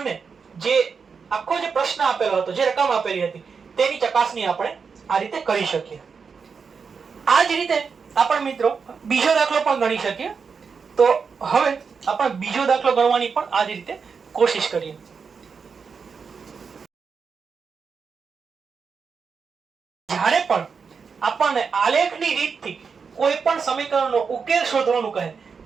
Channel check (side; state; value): left; quieter; 5.7 dB